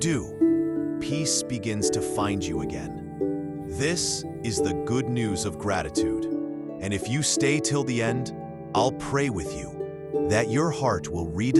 peace begins to find you again. This is the good news of gratitude. And if you stay till the end, I'll pray with you that your heart will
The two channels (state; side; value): identical; both; correlation 1.00